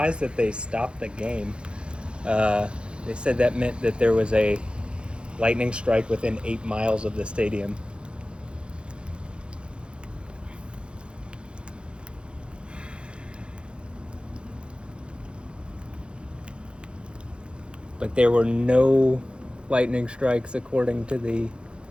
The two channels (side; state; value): left; late; 0.055 ms